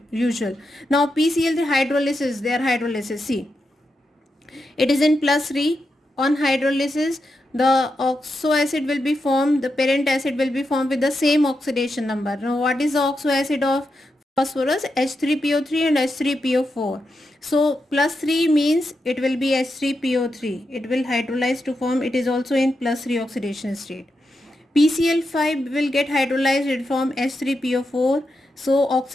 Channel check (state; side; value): normal; both; correlation 0.86